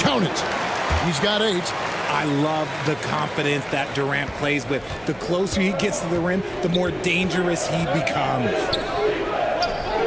it. He's got 8. I love the confidence that Durant plays with. The closer he gets to the rim, the more dangerous he becomes.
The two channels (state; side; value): noise; right; hum, 26 dB below the sound